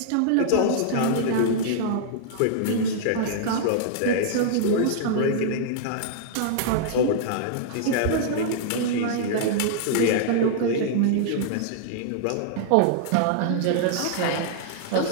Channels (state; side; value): different; both; correlation -0.01